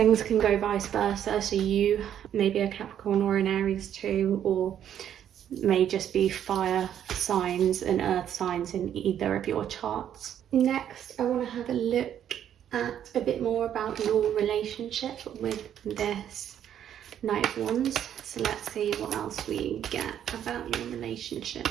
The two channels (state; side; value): quieter; left; 10.0 dB